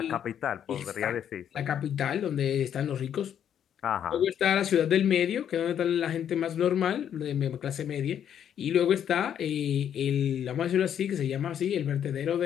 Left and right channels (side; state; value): right; quieter; 9.3 dB